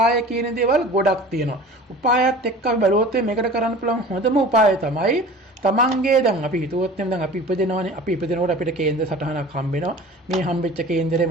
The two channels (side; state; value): both; normal; correlation 0.41